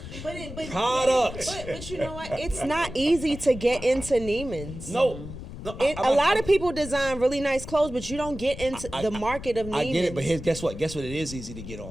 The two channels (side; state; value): left; noise; rumble, 11 dB below the sound